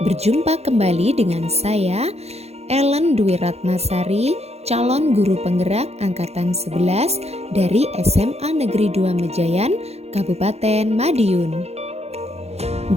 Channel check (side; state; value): left; late; 0.31 ms